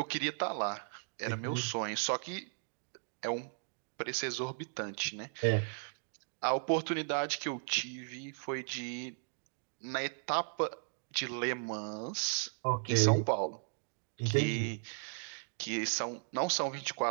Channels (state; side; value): silent; left; digital silence